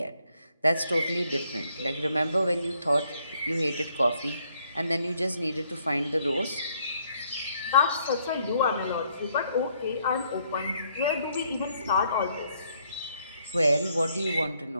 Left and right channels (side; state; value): both; inverted; correlation -0.70